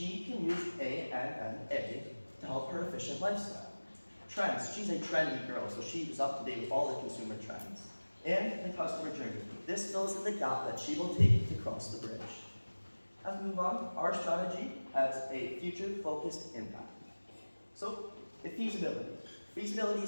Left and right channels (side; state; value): both; inverted; correlation -1.00